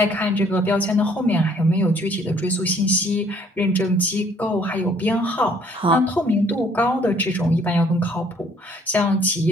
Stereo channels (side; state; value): both; normal; correlation 0.61